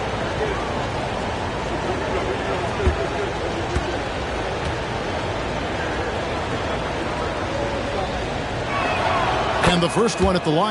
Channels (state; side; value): identical; both; correlation 1.00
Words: And the first one at the